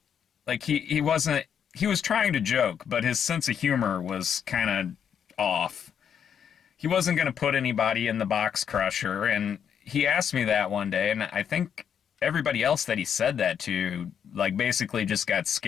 like he was trying to joke, but his sense of humor was kind of off. He wasn't going to put anybody in the box crusher. And he asked me that one day, and I think everybody else that he said that to, like, basically just got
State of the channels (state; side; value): quieter; right; 8.1 dB